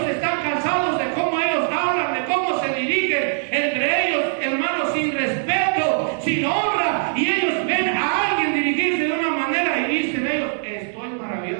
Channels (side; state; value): left; silent; 65 dB below the other